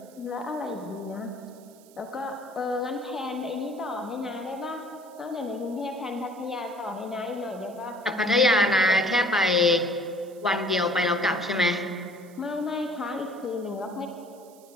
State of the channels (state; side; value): noise; right; hiss, 26 dB below the sound